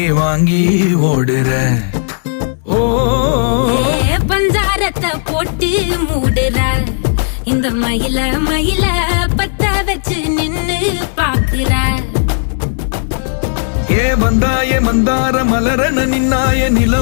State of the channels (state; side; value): silent; right; digital silence